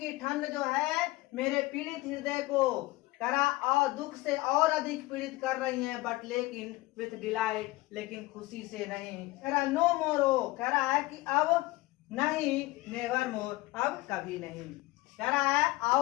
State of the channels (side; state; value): right; quieter; 19.9 dB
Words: ठंड जो है मेरे पीड़ित हृदय को, कह रहा और दुख से और अधिक पीड़ित कर रही है, बट लेकिन विथ डिलाइट, लेकिन खुशी से नहीं। कह रहा नो मोरो, कह रहा है कि अब नहीं, नेवर मोर, अब कभी नहीं। कह रहा है